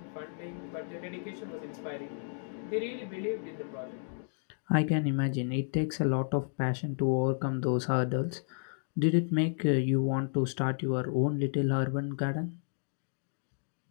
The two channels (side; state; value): right; silent; digital silence